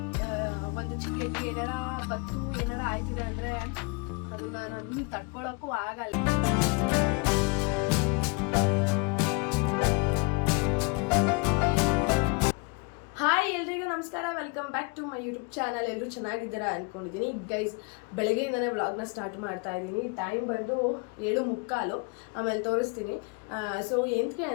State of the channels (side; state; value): right; quieter; 31.6 dB